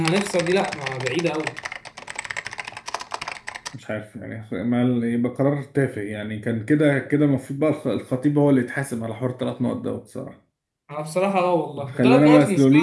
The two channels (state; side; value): identical; both; correlation 1.00